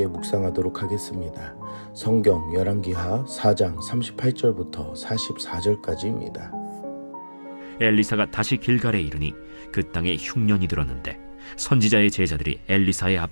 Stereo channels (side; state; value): both; inverted; correlation -1.00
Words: 묵상하도록 하겠습니다. 성경 열왕기하 4장 38절부터 44절까지입니다. 엘리사가 다시 길갈에 이르니 그 땅에 흉년이 들었는데 선지자의 제자들이 엘리사의